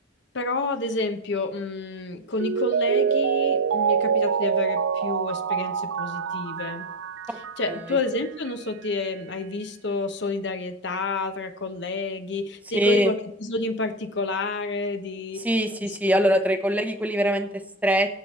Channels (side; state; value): both; normal; correlation 0.16